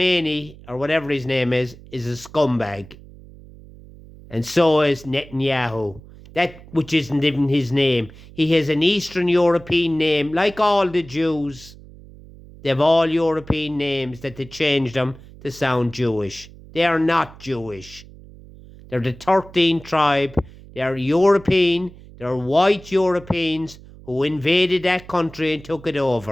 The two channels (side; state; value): right; noise; hum, 20 dB below the sound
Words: or whatever his name is a scumbag. And so is Netanyahu. That which isn't even his name. He has an Eastern European name, like all the Jews. They have all European names that they changed them to sound Jewish. They are not Jewish. They're the 13th tribe. They're European. They're white Europeans who invaded that country and took it